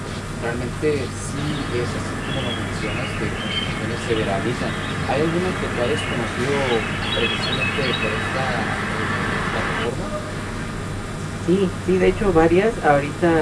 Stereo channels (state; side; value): identical; both; correlation 1.00